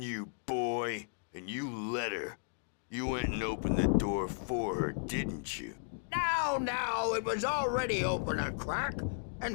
you, boy, and you let her. You went and opened the door for her, didn't you? Now, it was already open a crack. And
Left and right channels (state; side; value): silent; right; digital silence